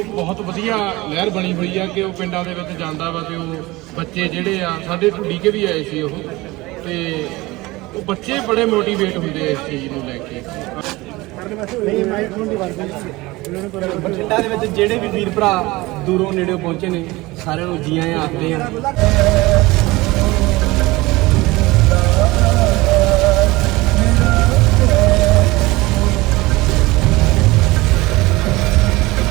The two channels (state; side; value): quieter; left; 21.0 dB